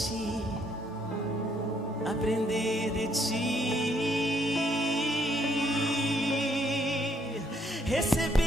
aprender de ti,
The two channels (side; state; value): both; normal; correlation 0.70